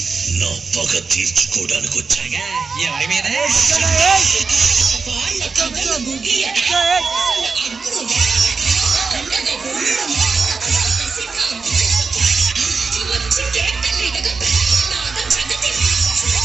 నా పగ తీర్చుకోవడానికి వచ్చాగా. ఎవరి మీద?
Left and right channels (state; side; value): quieter; left; 4.7 dB